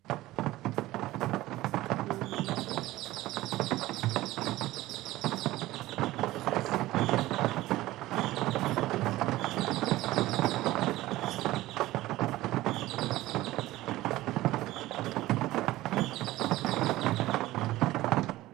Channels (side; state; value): left; quieter; 17.0 dB